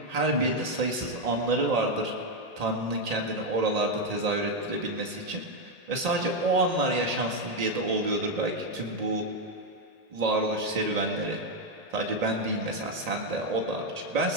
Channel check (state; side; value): late; left; 1.8 ms